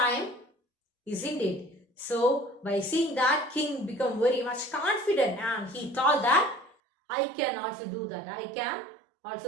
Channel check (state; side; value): drops out; left; at 6.8 s